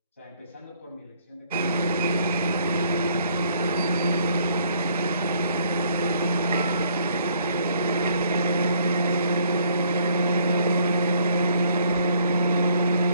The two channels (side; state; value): both; inverted; correlation -0.64